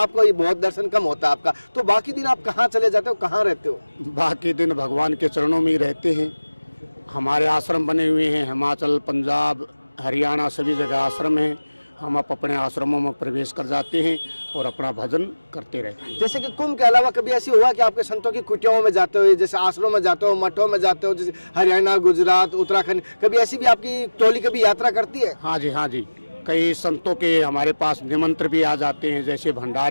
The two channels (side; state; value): both; inverted; correlation -1.00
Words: ये बहुत दर्शन कम होता है आपका, तो बाकी दिन आप कहाँ चले जाते हो, कहाँ रहते हो? बाकी दिन भगवान के चरणों में ही रहते हैं। हमारे आश्रम बने हुए हैं, हिमाचल, पंजाब, हरियाणा सभी जगह आश्रम हैं। हम अपने आश्रमों में प्रवेश कर जाते हैं और अपना भजन करते रहते हैं। जैसे कि कुंभ के अलावा कभी ऐसी हुआ कि आपके संतों की कुटियाओं में जाते हो, जैसे आश्रमों में जाते हो, मठों में जाते हो, जैसे हरियाणा, गुजरात, उत्तराखंड, कभी ऐसी भी आपकी टोली कभी यात्रा करती है? हाँ जी, हाँ जी, कई संतों के हमारे पास निमंत्रण भी आ जाते हैं, जैसे